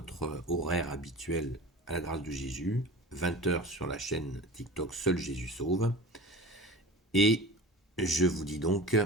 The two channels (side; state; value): both; normal; correlation 0.36